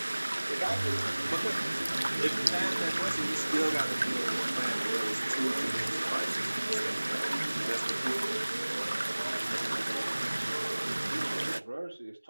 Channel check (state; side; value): inverted; both; correlation -1.00